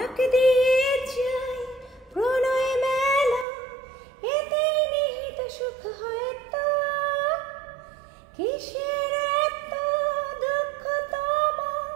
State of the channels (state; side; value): drops out; left; at 3.5 s